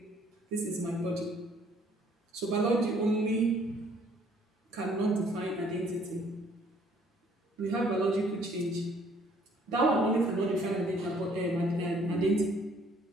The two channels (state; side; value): normal; both; correlation 0.61